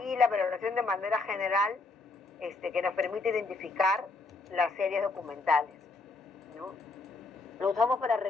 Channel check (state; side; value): quieter; right; 3.6 dB